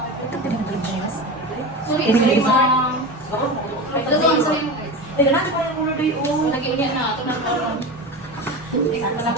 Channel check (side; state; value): both; normal; correlation 0.26